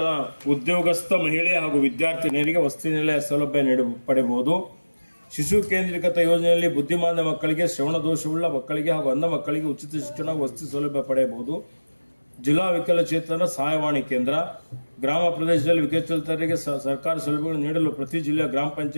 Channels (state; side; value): inverted; both; correlation -1.00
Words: ಉದ್ಯೋಗಸ್ಥ ಮಹಿಳೆ ಹಾಗೂ ವಿದ್ಯಾರ್ಥಿನಿಯರಿಗೆ ವಸತಿ ನಿಲಯ ಸೌಲಭ್ಯ ಪಡೆಯಬಹುದು. ಶಿಶು ಕೇಂದ್ರೀಕೃತ ಯೋಜನೆಯಲ್ಲಿ ಬುದ್ಧಿಮಾಂದ್ಯ ಮಕ್ಕಳಿಗೆ, ಶ್ರವಣ ದೋಷವುಳ್ಳ ಮಕ್ಕಳಿಗೆ ಹಾಗೂ ಅಂಧ ಮಕ್ಕಳಿಗೆ ಉಚಿತ ಶಿಕ್ಷಣ ವಸತಿ ಸೌಲಭ್ಯ ಪಡೆಯಬಹುದು. ಜಿಲ್ಲಾ ವಿಕಲಚೇತನ ಸಹಾಯವಾಣಿ ಕೇಂದ್ರ, ಗ್ರಾಮ ಪ್ರದೇಶದಲ್ಲಿ ವಿಕಲಚೇತನರಿಗೆ ಸರ್ಕಾರಿ ಸೌಲಭ್ಯಗಳನ್ನು ನೀಡಲು ಪ್ರತಿ ಜಿಲ್ಲೆಯ ಗ್ರಾಮ